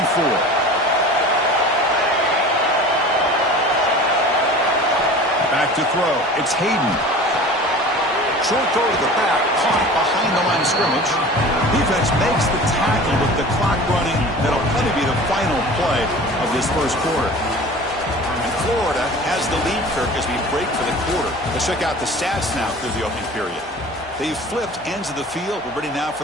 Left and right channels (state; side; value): normal; both; correlation 0.40